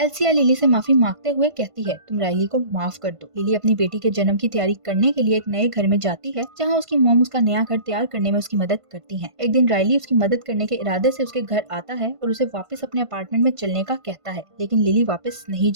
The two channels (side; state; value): left; late; 1.5 ms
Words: लिली से माफी मांगते हुए कहती है, तुम राइली को माफ कर दो। लिली अपनी बेटी के जन्म की तैयारी करने के लिए एक नए घर में जाती है, जहाँ उसकी मॉम उसका नया घर तैयार करने में उसकी मदद करती है। एक दिन राइली उसकी मदद करने के इरादे से उसके घर आता है और उसे वापस अपने अपार्टमेंट में चलने का कहता है, लेकिन लिली वापस नहीं